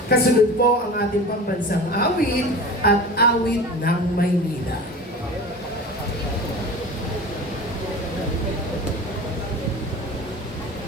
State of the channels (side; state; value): both; normal; correlation 0.34